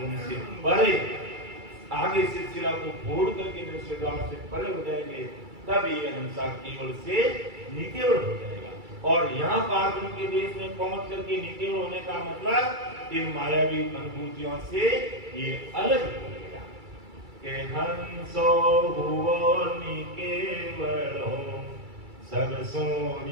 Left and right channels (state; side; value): late; left; 2.3 ms